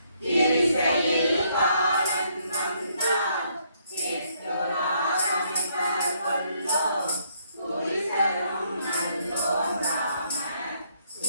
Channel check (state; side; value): inverted; both; correlation -0.70